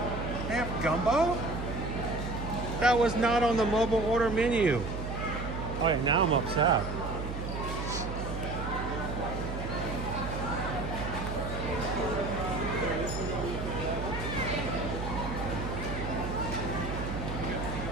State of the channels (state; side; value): noise; right; hum, 5 dB below the sound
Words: They have gumbo? That was not on the mobile order menu. Oh, yeah, now I'm upset.